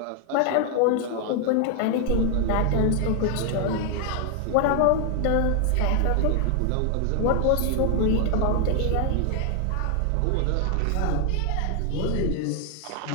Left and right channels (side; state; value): both; different; correlation 0.00